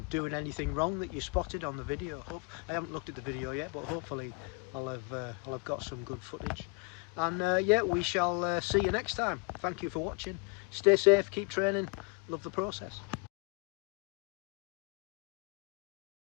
doing anything wrong that you spotted on the video. I haven't looked at the video yet, but hopefully I'll have got some good footage. And yeah, we shall see you next time. Thank you for watching. Stay safe, keep training, love the process.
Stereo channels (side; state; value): right; quieter; 30.4 dB